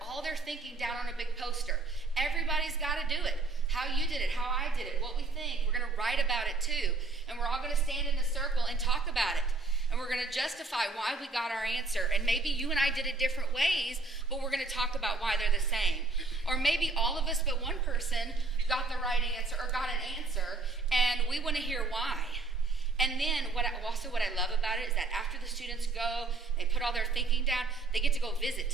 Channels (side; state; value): left; quieter; 3.6 dB